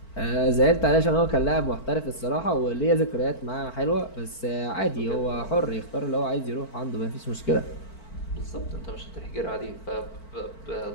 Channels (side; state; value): right; late; 4.5 ms